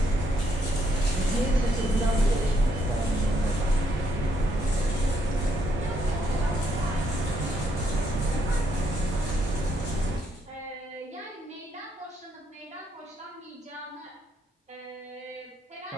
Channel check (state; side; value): normal; both; correlation 0.74